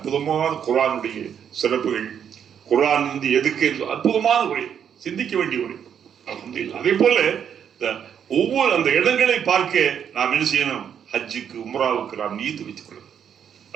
குர்ஆனுடைய சிறப்புகள், குர்ஆன் எதுக்கு அற்புதமான உரை, சிந்திக்க வேண்டிய உரை. அல்ஹம்துலில்லாஹ். அதே போல ஒவ்வொரு அந்த இடங்களை பார்க்க நாம் என்ன செய்யணும், ஹஜ்ஜுக்கு உம்ராவுக்கு நாம் நீத்து வைத்துக் கொள்ளணும்.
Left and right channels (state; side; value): quieter; left; 8.3 dB